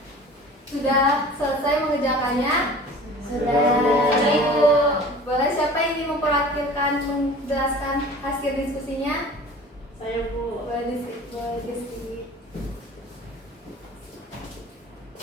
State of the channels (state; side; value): normal; both; correlation 0.43